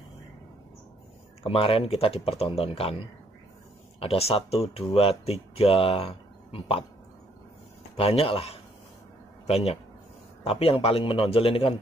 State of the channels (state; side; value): normal; both; correlation 0.67